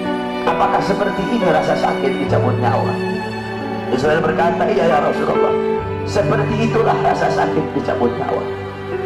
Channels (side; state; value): both; identical; correlation 1.00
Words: apakah seperti ini rasa sakit dicabut nyawa? Israel berkata, iya ya Rasulullah, seperti itulah rasa sakit dicabut nyawa.